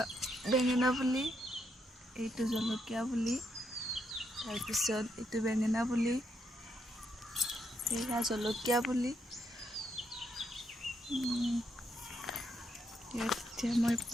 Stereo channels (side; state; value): both; normal; correlation 0.78